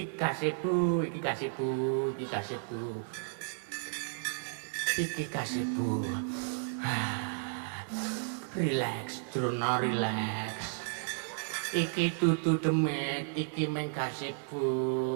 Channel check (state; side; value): silent; left; 56 dB below the other